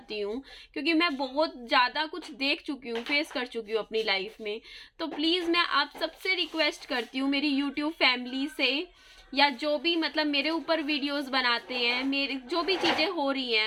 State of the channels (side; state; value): both; identical; correlation 1.00